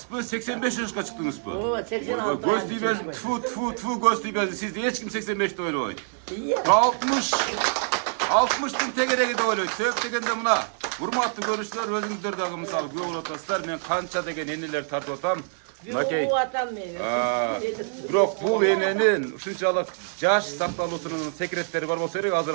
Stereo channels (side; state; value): left; silent; digital silence